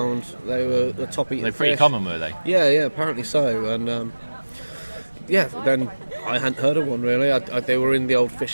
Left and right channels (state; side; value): inverted; both; correlation -1.00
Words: They were the top eating. They're pretty fish. Common, were they? Yeah, apparently so. And then I hadn't heard of one really. They were in the old